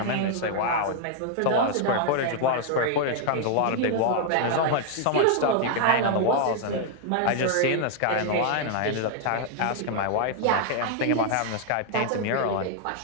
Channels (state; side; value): different; both; correlation 0.00